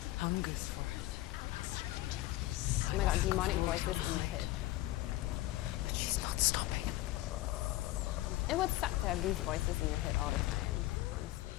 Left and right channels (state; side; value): quieter; right; 16.9 dB